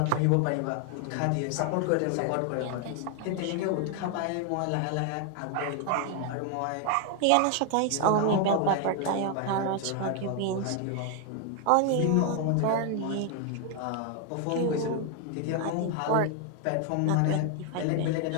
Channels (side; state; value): both; different; correlation 0.00